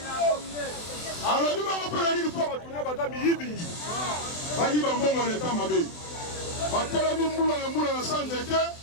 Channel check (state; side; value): late; right; 24 ms